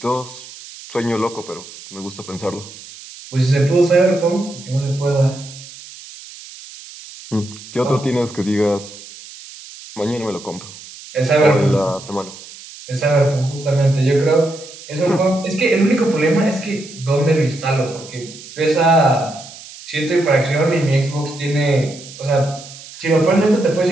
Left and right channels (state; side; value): noise; right; hiss, 17 dB below the sound